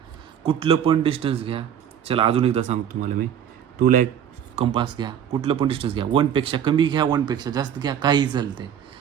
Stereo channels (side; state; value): left; quieter; 9.2 dB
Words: कुठलं पण डिस्टन्स घ्या, चला अजून एकदा सांगतो तुम्हाला मी. 2ला एक कंपास घ्या, कुठलं पण डिस्टन्स घ्या, 1पेक्षा कमी घ्या 1पेक्षा जास्त घ्या, काही चालते.